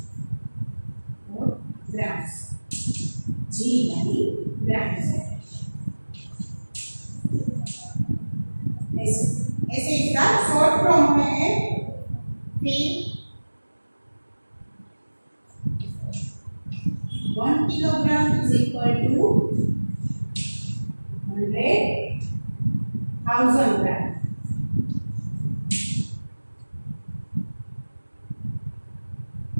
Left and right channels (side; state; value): both; inverted; correlation -1.00